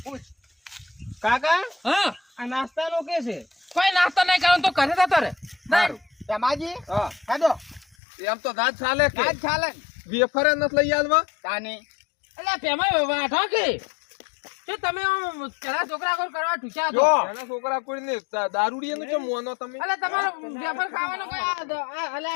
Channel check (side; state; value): right; drops out; at 8.0 s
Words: પૂછ કાકા હા આ નાસ્તાનો કે છે કોઈ નાસ્તો નહીં કરો તો ઘરે જતો રે. સારું રમાજી હા હેડો એમ તો દાદ ચાલે કે આજ ચાલે વેફર નથી લઈ આવવા તાની એટલે પેમાઈ વાઠો કે શું તમે આમ પેલા છોકરા કોલ કરવા ઠૂચા જો. હતો? એના છોકરા કોઈને દારૂડિયાનું છે મોનો તમે અલે તમારો વેફર ખાવાનો કોઈ અલે